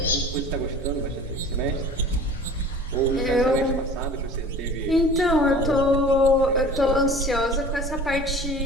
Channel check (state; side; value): noise; right; hum, 17 dB below the sound